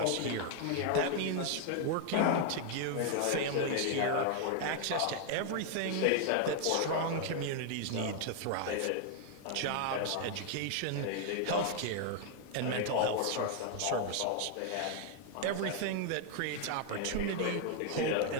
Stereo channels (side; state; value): both; different; correlation 0.00